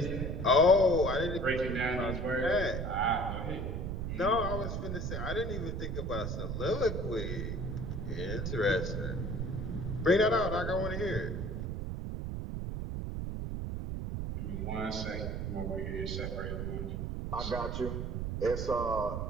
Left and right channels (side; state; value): right; noise; rumble, 3 dB below the sound